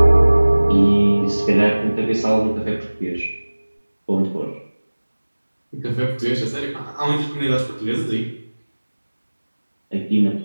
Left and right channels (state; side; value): inverted; both; correlation -1.00